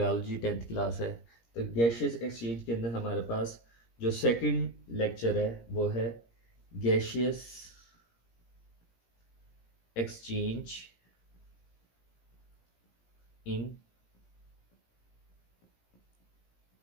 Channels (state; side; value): late; right; 17 ms